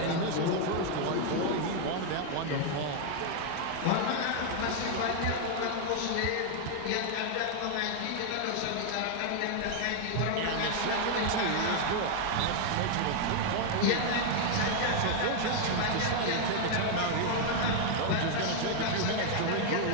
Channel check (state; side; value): different; both; correlation 0.00